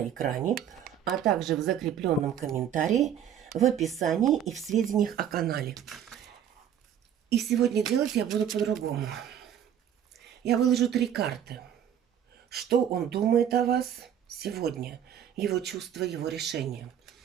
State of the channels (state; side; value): quieter; left; 9.5 dB